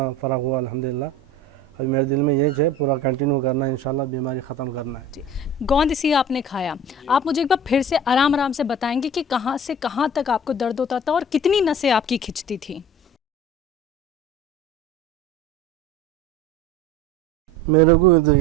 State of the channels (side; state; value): both; normal; correlation 0.40